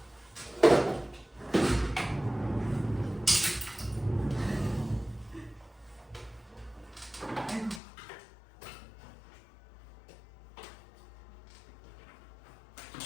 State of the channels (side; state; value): right; drops out; at 7.8 s